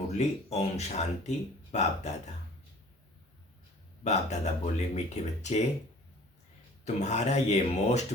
ओम शांति। बाप दादा बोले, मीठे बच्चे, तुम्हारा ये मोस्ट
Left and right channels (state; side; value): normal; both; correlation 0.49